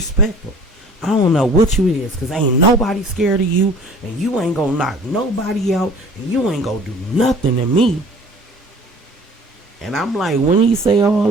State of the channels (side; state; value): both; normal; correlation 0.48